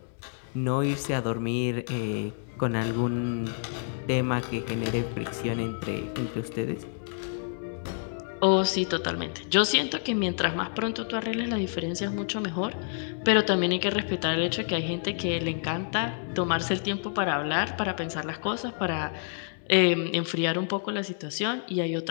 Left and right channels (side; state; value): right; silent; 59 dB below the other